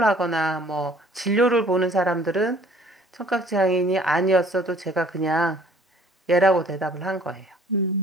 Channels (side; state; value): both; normal; correlation 0.55